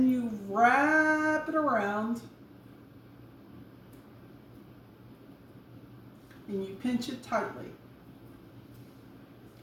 you wrap it around and you pinch it tightly.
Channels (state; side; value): identical; both; correlation 1.00